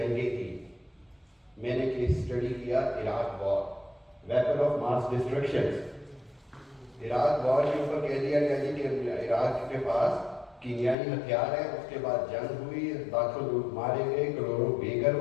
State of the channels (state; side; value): drops out; right; at 11.0 s